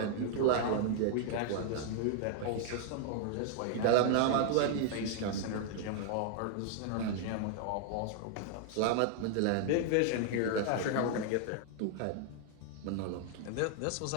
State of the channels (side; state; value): both; different; correlation 0.00